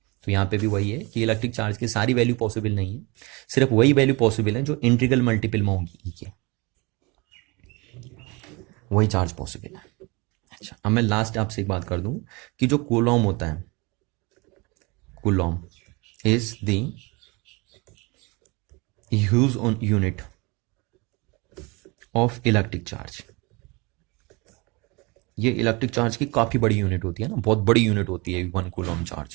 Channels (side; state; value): left; quieter; 26.6 dB